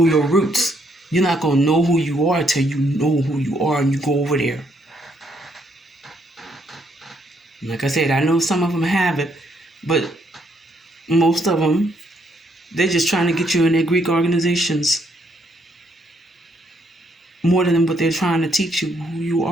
your roots. You're not going to know who you are until you know who you are and you go over there. Like I said, I know some of them have it, but most of them, they're just trying to get you in their Greek organizations more than what they're trying to teach you who you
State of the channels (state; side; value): normal; both; correlation 0.72